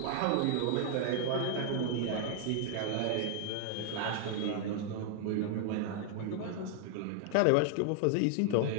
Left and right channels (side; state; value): both; different; correlation 0.00